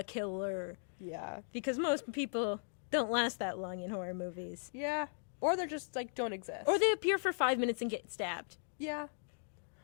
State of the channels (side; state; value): right; silent; digital silence